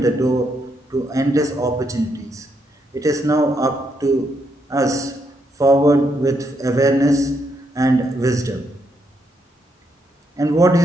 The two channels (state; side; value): normal; both; correlation 0.78